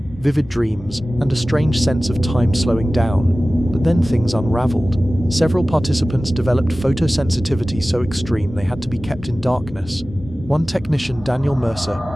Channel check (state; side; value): normal; both; correlation 0.97